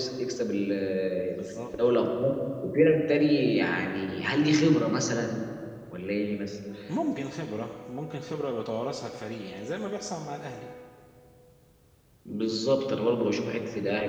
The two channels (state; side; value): identical; both; correlation 1.00